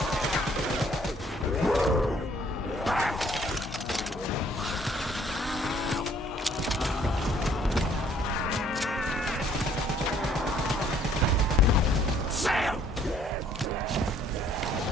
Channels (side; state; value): both; normal; correlation 0.61